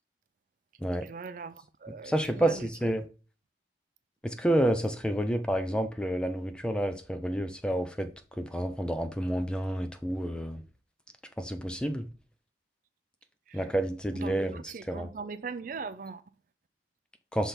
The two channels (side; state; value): both; normal; correlation 0.86